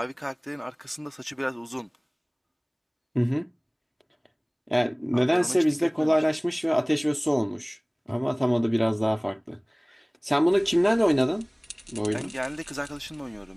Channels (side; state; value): both; identical; correlation 1.00